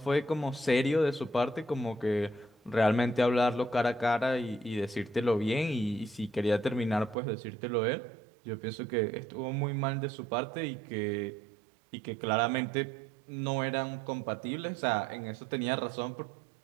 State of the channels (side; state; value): left; drops out; at 7.2 s